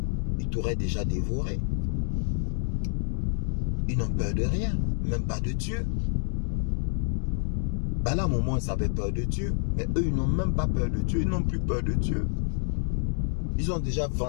ils t'auraient déjà dévoré. Ils n'ont peur de rien, même pas de Dieu. Balaam au moins, ils avaient peur de Dieu. Mais eux, ils n'ont même pas peur de Dieu. Ils n'ont plus peur de Dieu. Ils ont déjà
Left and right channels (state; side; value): silent; right; 59 dB below the other